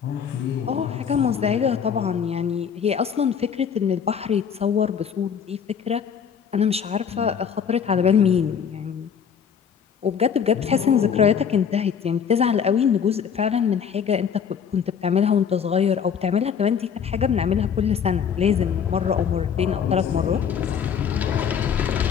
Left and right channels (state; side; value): quieter; right; 7.4 dB